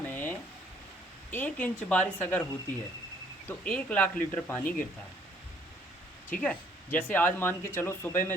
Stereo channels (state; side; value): normal; both; correlation 0.63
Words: 1 इंच बारिश अगर होती है तो 1 लाख लीटर पानी गिरता है, ठीक है। जैसे आज मान के चलो सुबह